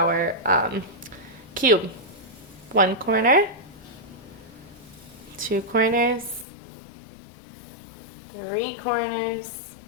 cube. 1 corner, 2 corners, 3 corners,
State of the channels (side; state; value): right; drops out; at 6.5 s